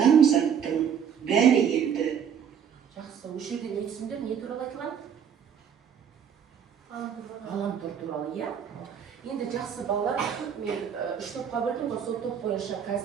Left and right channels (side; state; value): left; quieter; 8.0 dB